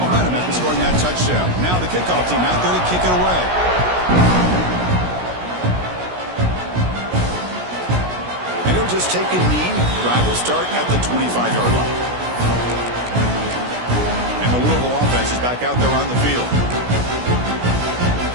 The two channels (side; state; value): left; late; 16 ms